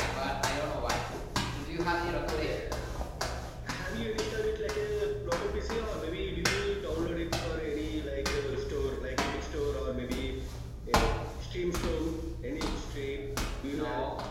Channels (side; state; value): both; identical; correlation 1.00